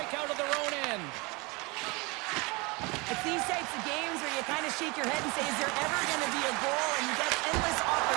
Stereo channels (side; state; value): left; quieter; 26.7 dB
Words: out of their own end. It's these types of games where you kind of shake your head and say, is there ever going to be a goal? And you get endless